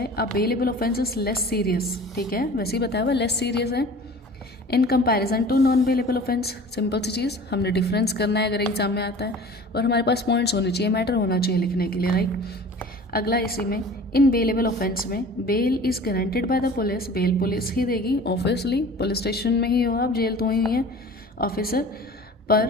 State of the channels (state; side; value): normal; both; correlation 0.42